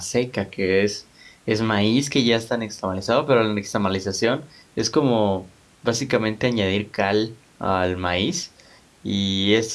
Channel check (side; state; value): both; identical; correlation 1.00